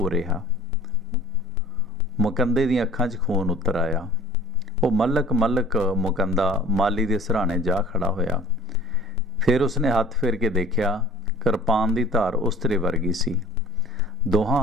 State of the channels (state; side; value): normal; both; correlation 0.47